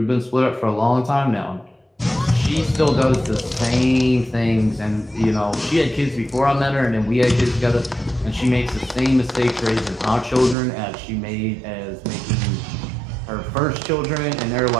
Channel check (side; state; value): left; drops out; at 10.6 s